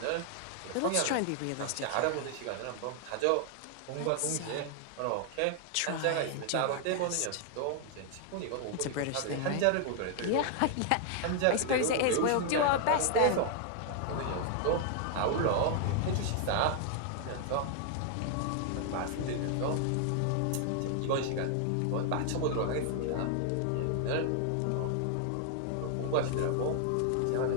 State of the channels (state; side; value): different; both; correlation 0.00